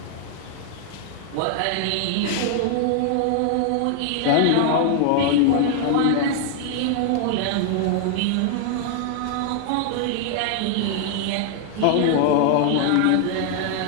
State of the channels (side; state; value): both; different; correlation 0.00